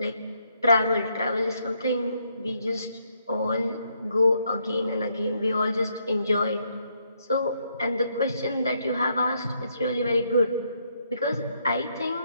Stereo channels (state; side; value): inverted; both; correlation -0.74